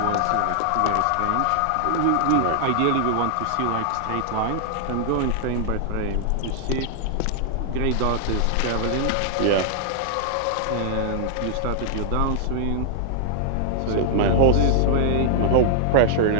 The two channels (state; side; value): different; both; correlation 0.00